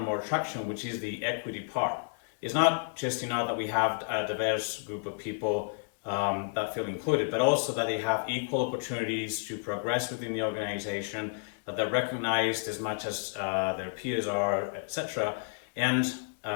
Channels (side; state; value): right; silent; 57 dB below the other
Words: more traction, which is the equity part. It's not just that we have a diverse group of people that feel included, but also that they have equal opportunities to progress within the organization, that they're recognized as much as their peers are, etc. And